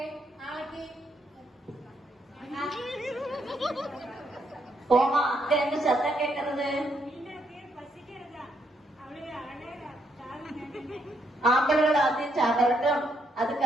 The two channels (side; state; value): both; normal; correlation 0.75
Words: கோமா, அங்க என்ன சத்தம் கேட்கறது? ஆம்பளர்கள் ஆദ്യം சாப்பிடட்டும்,